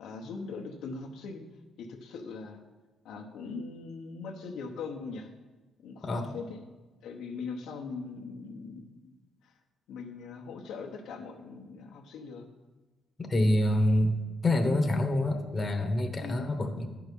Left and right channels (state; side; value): normal; both; correlation 0.87